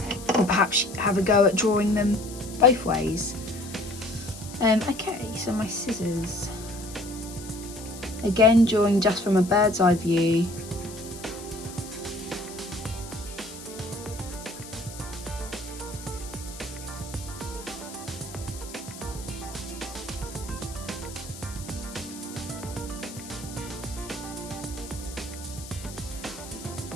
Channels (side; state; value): left; noise; hiss, 14 dB below the sound